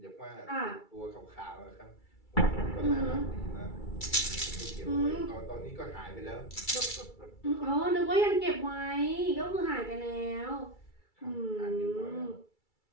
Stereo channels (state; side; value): late; right; 2.3 ms